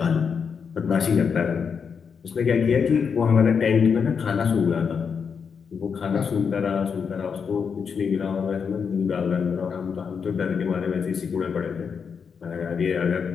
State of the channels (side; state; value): right; quieter; 6.3 dB